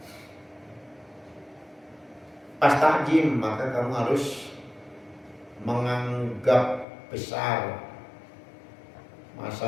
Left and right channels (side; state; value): right; drops out; at 6.9 s